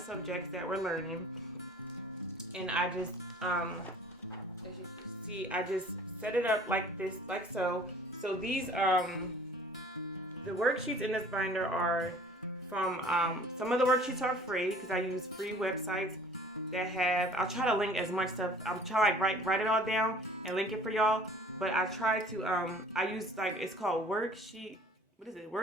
that we're learning, and I just, as you can see, I just set it up like this, like so. So these, the worksheets in this binder are from, some of the worksheets are free because I use free websites that have, I'll try to link as much stuff. I'm trying to write it all down and link it for y'all. But I try to, I use like, it's called worksheet, what is it?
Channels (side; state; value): both; normal; correlation 0.50